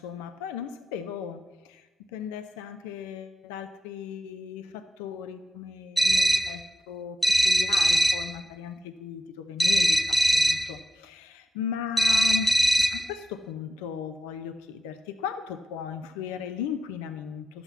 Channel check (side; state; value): both; normal; correlation 0.89